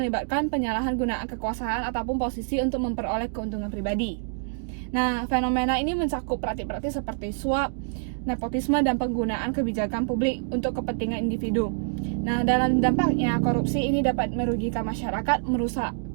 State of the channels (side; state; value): left; silent; digital silence